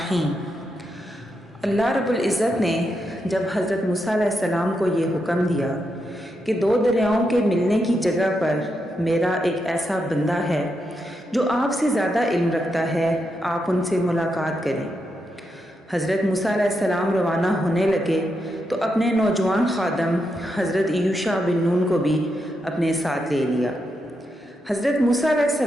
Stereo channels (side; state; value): both; normal; correlation 0.84